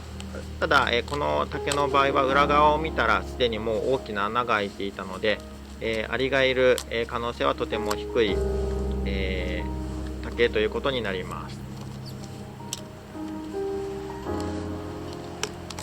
ただ、この竹の場合は裏側を見たらすでにもう大きな穴が開いていたので、アリがいる、可能性はとても低い、竹ということになります。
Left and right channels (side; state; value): both; identical; correlation 1.00